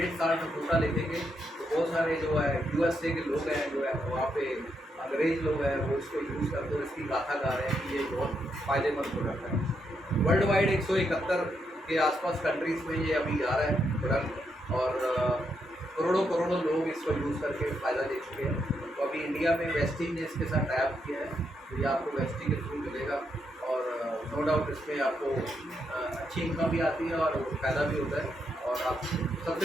साल्ट फूटा लिखेंगे तो बहुत सारे जो है USA के लोग हैं, जो है वहाँ पे अंग्रेज़ लोग हैं, वो इसको यूज़ करते हुए इसकी गाथा गा रहे हैं कि ये बहुत फ़ायदेमंद प्रोडक्ट है। वर्ल्ड वाइड 171 के आसपास कंट्रीज़ में ये अभी जा रहा है प्रोडक्ट और करोड़ों लोग इसको यूज़ करके फ़ायदा ले चुके हैं। तो अभी इंडिया में वेस्टी ने इसके साथ टाइप किया है, तो ये आपको वेस्टी के थ्रू मिलेगा और नो डाउट इसमें आपको अच्छी इनकम भी आती है और फ़ायदा भी होता है। और आप सबसे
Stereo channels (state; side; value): normal; both; correlation 0.80